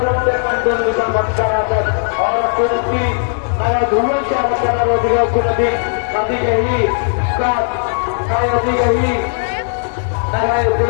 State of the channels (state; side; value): silent; right; digital silence